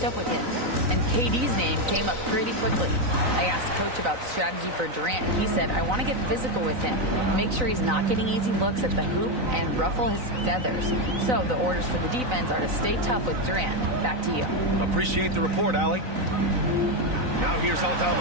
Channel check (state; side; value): late; left; 3.9 ms